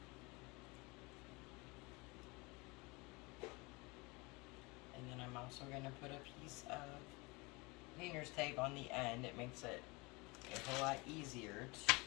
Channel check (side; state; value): right; quieter; 26.1 dB